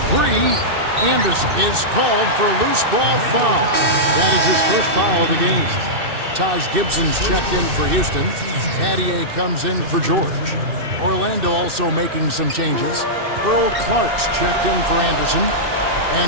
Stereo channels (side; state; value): left; late; 2.6 ms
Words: Anderson is called for a loose ball foul. That is his first foul of the game. Taj Gibson's checked in for Houston. Adier comes in for George. Orlando also making some changes. Earl Clark's checked in for Anderson.